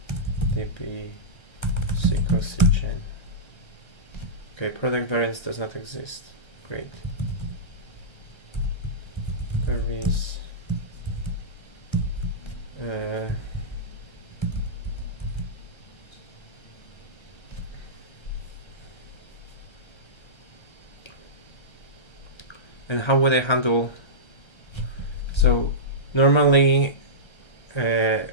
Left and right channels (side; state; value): right; late; 1.3 ms